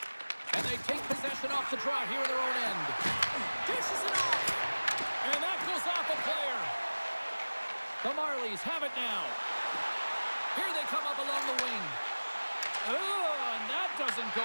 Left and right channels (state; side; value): inverted; both; correlation -1.00